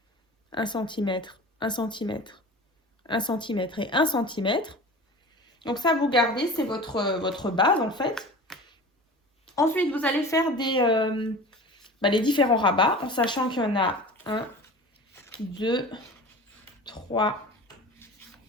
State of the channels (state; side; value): normal; both; correlation 0.37